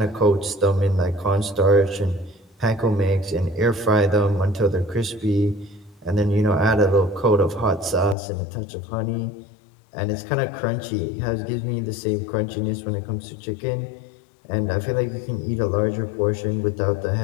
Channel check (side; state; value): right; drops out; at 8.2 s